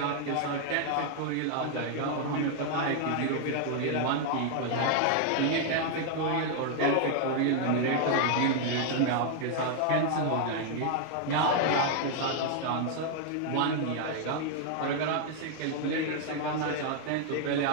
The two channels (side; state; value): both; different; correlation 0.00